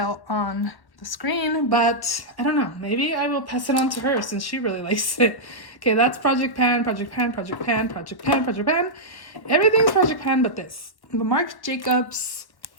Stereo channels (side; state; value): right; late; 1.1 ms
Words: on the screen, but I don't know. Maybe I will pass it on to her since she really likes it. Okay, that's Project Pan, Project Pan, Project Pan, Project Pan, Project Pan. Everything's Project Pan but this. The Marc Jacobs